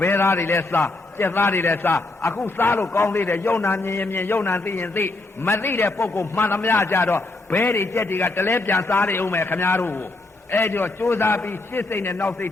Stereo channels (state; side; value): quieter; right; 3.1 dB